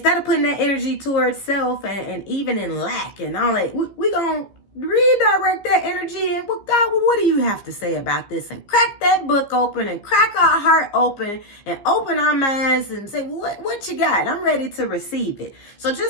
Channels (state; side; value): late; right; 15 ms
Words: of putting that energy towards self and even in lack and all that, we're going to redirect that energy. And, well, God, what do you have to say about this? And crack that book open and crack our heart open and open our minds and say, what you got? I'm ready to receive it. So